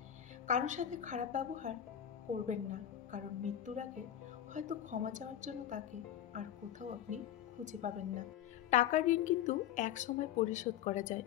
কারোর সাথে খারাপ ব্যবহার করবেন না, কারণ মৃত্যুর আগে হয়তো ক্ষমা চাওয়ার জন্য তাকে আর কোথাও আপনি খুঁজে পাবেন না। টাকার ঋণ কিন্তু এক সময় পরিশোধ করা যায়,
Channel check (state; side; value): quieter; right; 10.8 dB